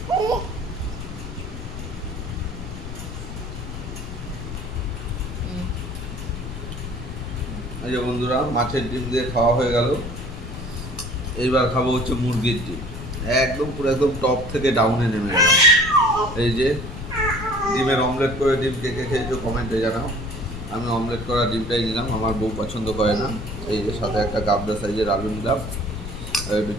এই যে বন্ধুরা মাছের ডিম দিয়ে খাওয়া হয়ে গেল। এইবার খাবো হচ্ছে মুরগির ডিম। একদম পুরো একদম টপ থেকে ডাউনে নেমে গেলাম। এই যে ডিমের অমলেট করে ডিম কে কে খেয়েছো কমেন্টে জানাও। আমি অমলেট করা ডিমটাই নিলাম, আমার বউ পছন্দ করে না। এই যে সাথে একটা গাবদা সাইজের আলু নিলাম, একটু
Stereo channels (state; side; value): noise; left; rumble, 9 dB below the sound